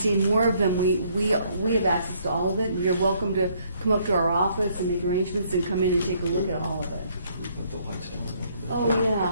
more of them, we have access to all of it. You're welcome to come up to our office and make arrangements and come in and take a look at all of it. Put the lights down a Oh, little bit.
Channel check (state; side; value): inverted; both; correlation -0.67